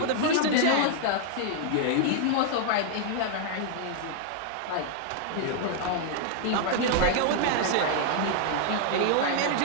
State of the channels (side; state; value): both; different; correlation 0.00